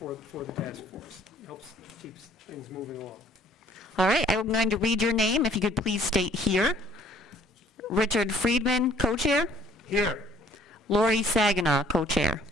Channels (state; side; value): normal; both; correlation 0.58